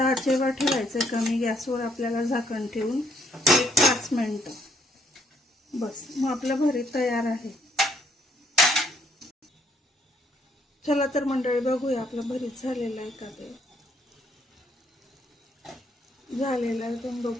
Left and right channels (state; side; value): normal; both; correlation 0.69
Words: ठेवायचं, कमी गॅसवर आपल्याला झाकण ठेवून 1-5 मिनिटं बस. मग आपलं भरीत तयार आहे. चला तर मंडळी बघूया आपलं भरीत झालेलं आहे का. ते झालेलं आहे, तुम्ही